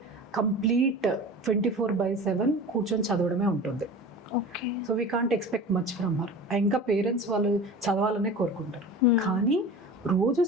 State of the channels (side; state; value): both; normal; correlation 0.36